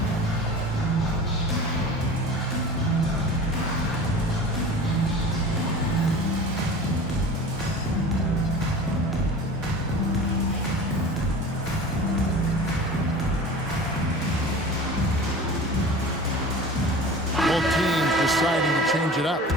deciding to change it up.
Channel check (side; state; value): both; normal; correlation 0.38